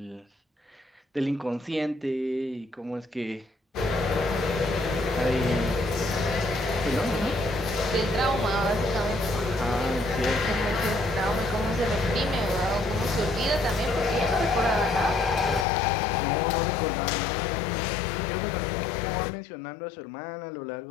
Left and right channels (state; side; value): drops out; right; at 15.7 s